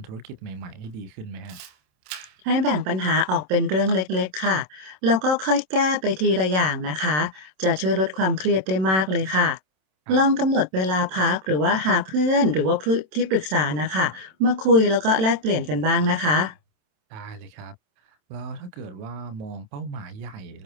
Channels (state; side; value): late; left; 27 ms